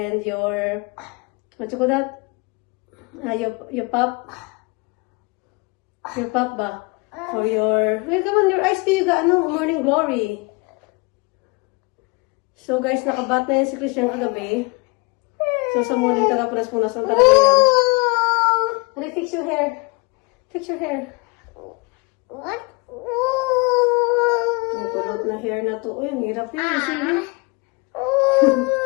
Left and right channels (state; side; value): quieter; right; 28.3 dB